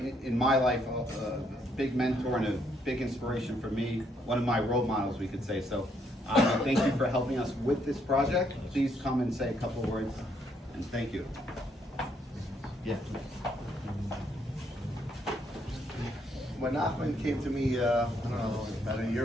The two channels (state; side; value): normal; both; correlation 0.72